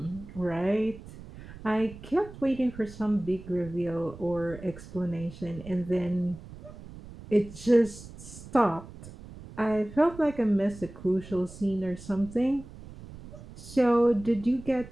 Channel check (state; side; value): noise; right; rumble, 16 dB below the sound